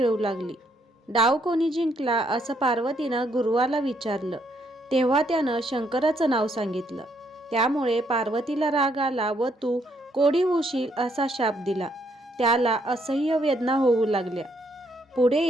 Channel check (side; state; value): both; normal; correlation 0.72